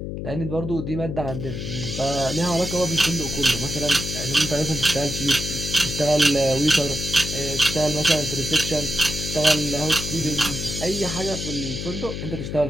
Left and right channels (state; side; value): noise; left; hum, 6 dB below the sound